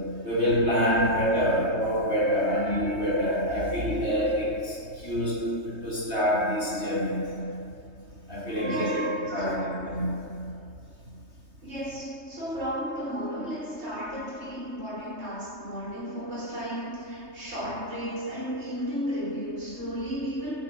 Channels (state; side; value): late; left; 3.2 ms